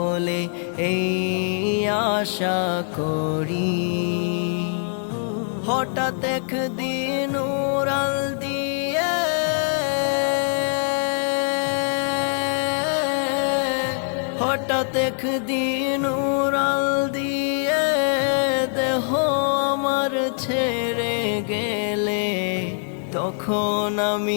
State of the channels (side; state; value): right; silent; 63 dB below the other